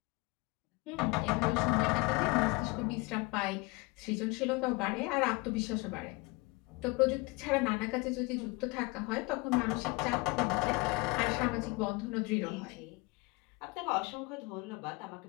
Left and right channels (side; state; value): right; quieter; 25.2 dB